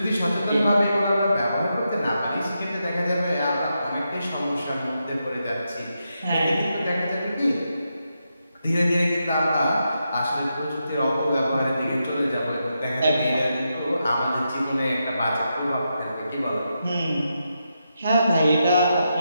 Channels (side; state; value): both; inverted; correlation -0.85